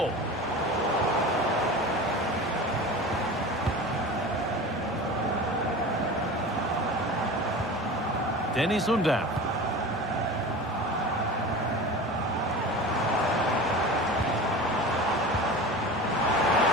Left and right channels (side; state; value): both; normal; correlation 0.34